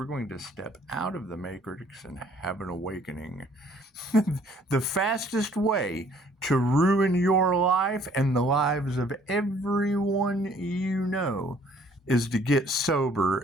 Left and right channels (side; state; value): both; normal; correlation 0.59